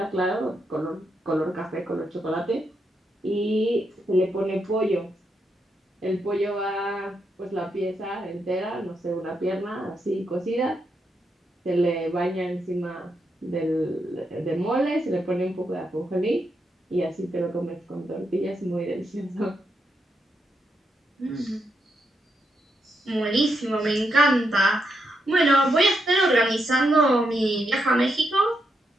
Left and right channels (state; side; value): normal; both; correlation 0.82